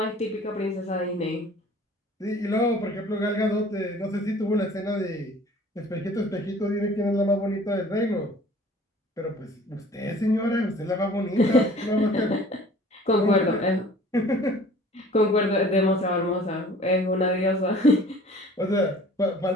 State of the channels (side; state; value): both; normal; correlation 0.49